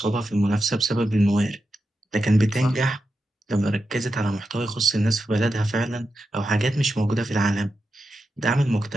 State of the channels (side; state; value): both; normal; correlation 0.88